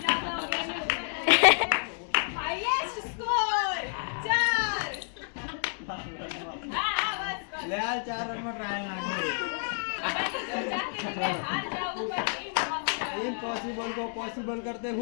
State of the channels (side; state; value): right; silent; 58 dB below the other